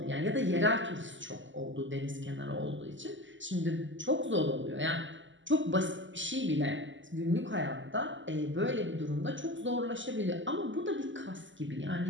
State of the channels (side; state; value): left; late; 0.55 ms